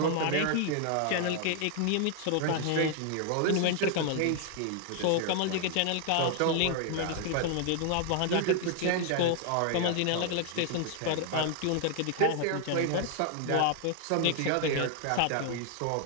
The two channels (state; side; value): different; both; correlation 0.00